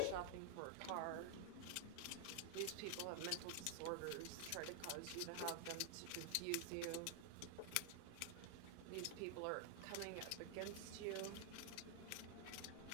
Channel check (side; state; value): both; different; correlation 0.00